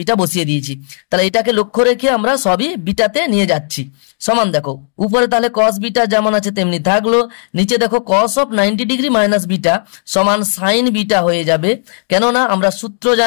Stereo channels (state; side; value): silent; right; digital silence